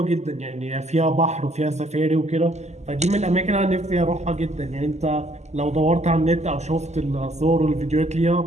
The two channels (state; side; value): late; left; 0.33 ms